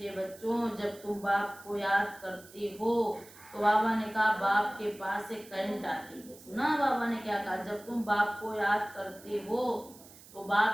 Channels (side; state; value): right; noise; hiss, 21 dB below the sound